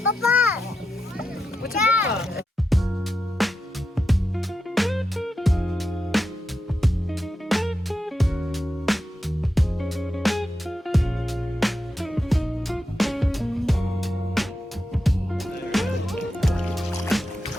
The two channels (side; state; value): both; normal; correlation 0.88